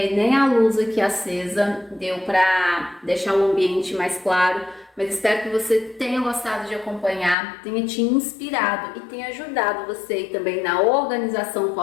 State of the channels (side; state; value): right; drops out; at 7.4 s